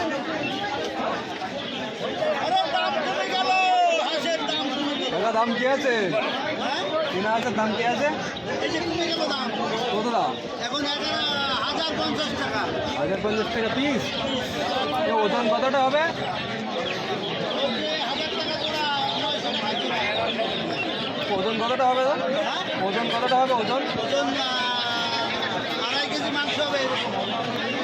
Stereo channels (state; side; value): identical; both; correlation 1.00